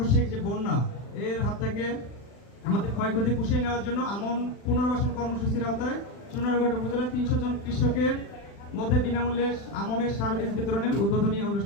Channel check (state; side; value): late; right; 40 ms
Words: যে বন্যা, এর হাত থেকে আমাদের ক্ষয়ক্ষতি পুষিয়ে নেওয়ার জন্য আমন পুনর্বাসন কর্মসূচির আওতায় চুনারঘাট উপজেলায় 300 জন কৃষকের মধ্যে বিনামূল্যে আমনের সার বীজ বিতরণের উদ্বোধনী